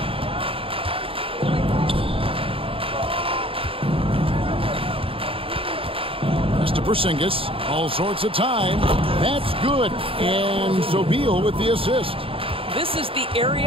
To Porzingis, all sorts of time. That's good. And so Beal with the assist. This is the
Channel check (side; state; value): left; late; 0.27 ms